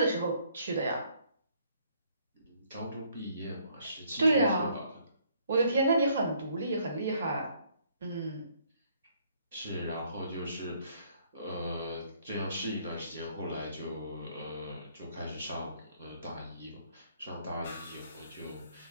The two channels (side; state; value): both; inverted; correlation -0.65